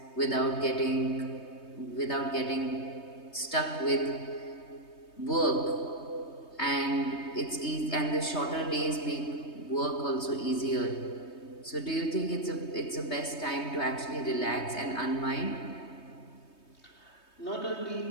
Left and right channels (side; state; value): right; late; 3.2 ms